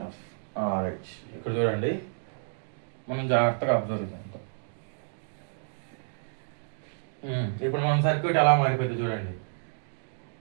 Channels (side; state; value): left; silent; digital silence